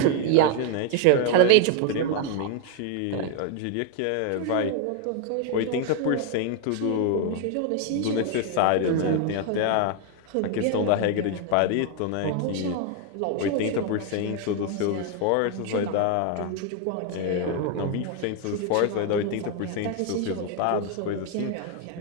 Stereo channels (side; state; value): both; different; correlation 0.01